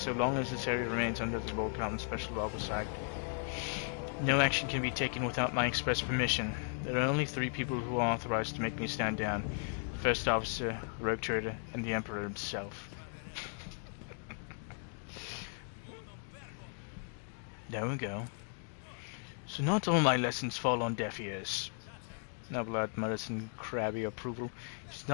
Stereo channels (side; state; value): right; silent; 54 dB below the other